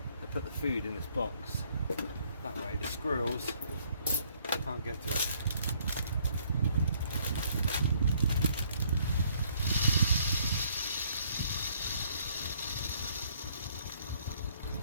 I put the food in this box. That way the squirrels can't get to it.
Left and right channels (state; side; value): inverted; both; correlation -0.65